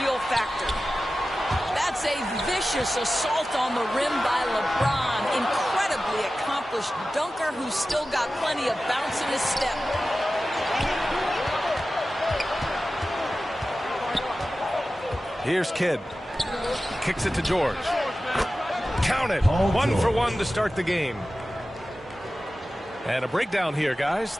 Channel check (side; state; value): both; normal; correlation 0.95